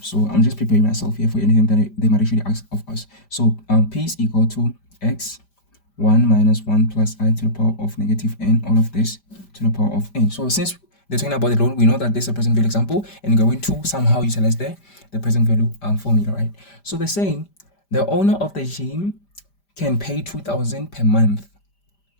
so I'm just preparing myself here for anything that they might actually ask of us. So P is equal to x 1 minus 1 plus I to the power of negative n, all of this to the power of n. So since they're talking about the loan, we know that this is a present value example, and we're going to somehow utilize the present value formula, right? So they're saying the owner of the gym can pay 2,000 per month.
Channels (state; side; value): late; right; 5.0 ms